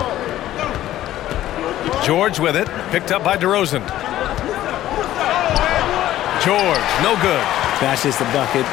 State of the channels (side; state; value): right; quieter; 13.6 dB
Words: George with it, picked up by DeRozan. George, no good. That's just the bucket